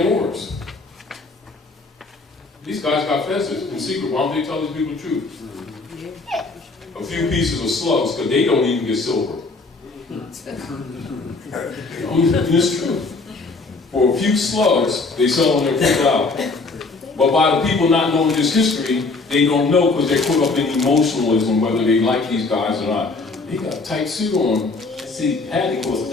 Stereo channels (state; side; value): quieter; right; 3.7 dB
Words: Moors. These guys got fezzes in secret. Why don't they tell these people the truth? A few pieces of slugs, because they don't even get silver. It's true. For a few slugs, they sell them their food out. But by the people not knowing this history, they don't know because they're caught up in emotionalism, whether they like these guys or not. He got a tight suit on. See, Hattie costs